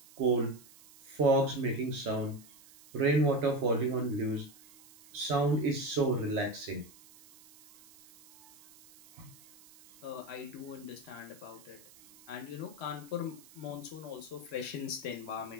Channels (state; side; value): noise; right; hiss, 23 dB below the sound